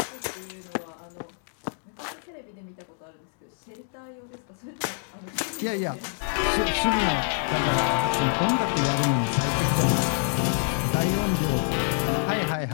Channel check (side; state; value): right; silent; 60 dB below the other